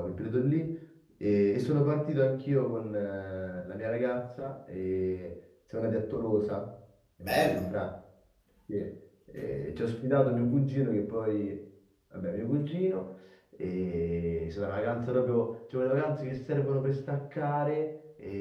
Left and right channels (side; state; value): both; identical; correlation 1.00